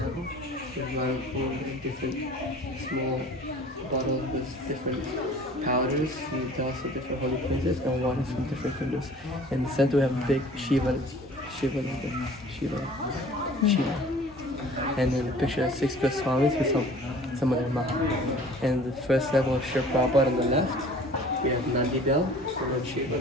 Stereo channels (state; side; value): normal; both; correlation 0.48